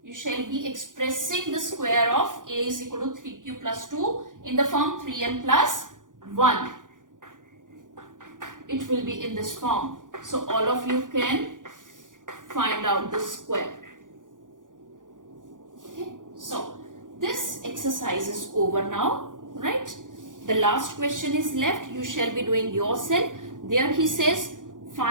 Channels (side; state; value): left; late; 0.88 ms